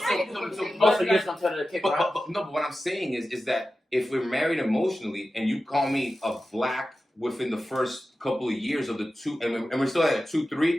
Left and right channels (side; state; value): both; normal; correlation 0.93